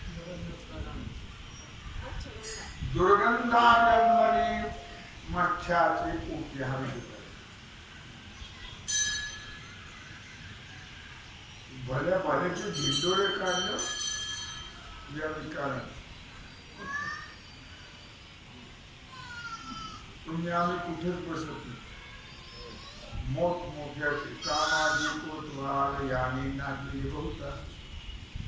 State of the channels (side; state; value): both; identical; correlation 1.00